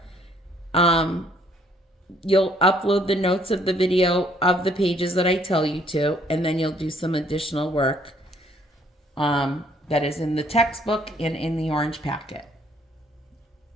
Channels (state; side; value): normal; both; correlation 0.64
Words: you'll upload the notes of the video of the pages that I tell you to, and then you'll do some additional work that is in the textbook and in the orange packet.